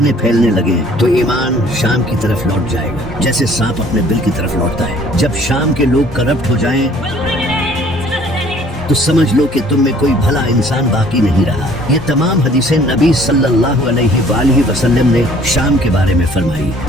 پھیلنے لگیں تو ایمان شام کی طرف لوٹ جائے گا، جیسے سانپ اپنے بل کی طرف لوٹتا ہے۔ جب شام کے لوگ کرپٹ ہو جائیں تو سمجھ لو کہ تم میں کوئی بھلا انسان باقی نہیں رہا۔ یہ تمام حدیثیں نبی صلی اللہ علیہ وآلہ وسلم نے شام کے بارے میں فرمائی،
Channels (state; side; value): normal; both; correlation 0.56